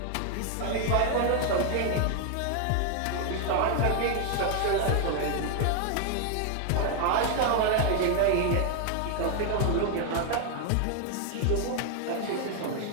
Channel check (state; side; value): different; both; correlation 0.00